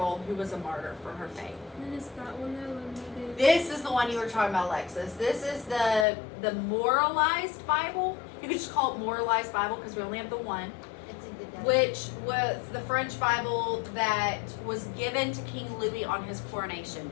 who was a martyr for her faith. And then is that one that limited? This is the one you were talking about, Alexis. This is the moralized Bible. You could just call it moralized Bible because we only have the one, It's a good day. which was the French Bible that was given to King Louis on his coronation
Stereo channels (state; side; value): drops out; right; at 6.1 s